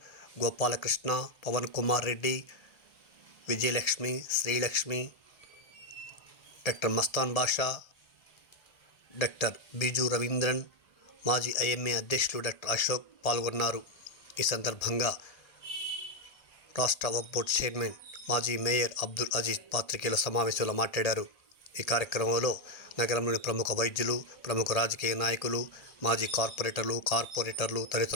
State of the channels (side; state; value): right; late; 1.8 ms